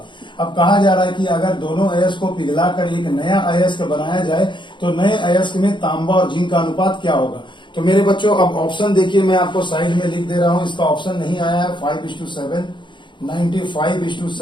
अब कहा जा रहा है कि अगर दोनों अयस्क को पिघलाकर एक नया अयस्क बनाया जाए तो नए अयस्क में तांबा और जिंक का अनुपात क्या होगा। तो मेरे बच्चों अब ऑप्शन देखिए, मैं आपको साइड में लिख दे रहा हूं, इसका ऑप्शन नहीं आया है 5:7,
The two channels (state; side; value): late; right; 0.23 ms